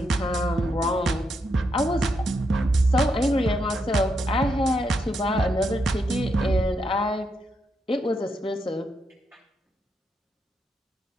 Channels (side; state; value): both; normal; correlation 0.80